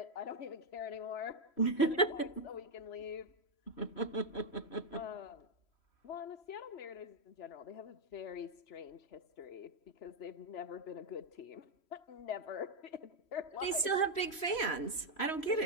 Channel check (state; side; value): late; right; 3.1 ms